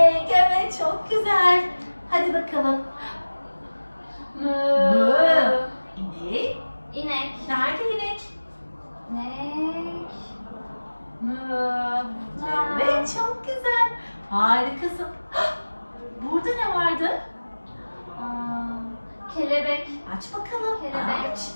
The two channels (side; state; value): both; inverted; correlation -1.00